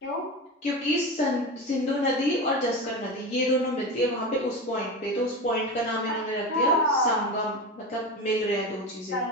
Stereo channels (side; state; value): both; normal; correlation 0.24